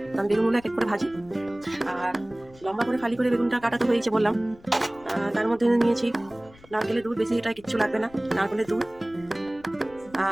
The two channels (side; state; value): left; noise; rumble, 24 dB below the sound